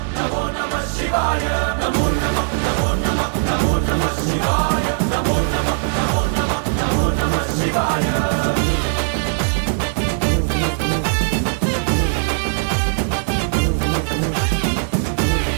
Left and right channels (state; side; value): silent; left; 66 dB below the other